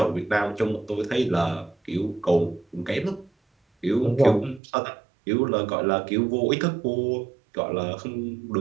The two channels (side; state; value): left; drops out; at 4.6 s